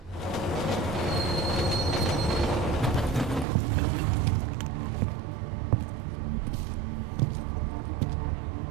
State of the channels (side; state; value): left; drops out; at 3.5 s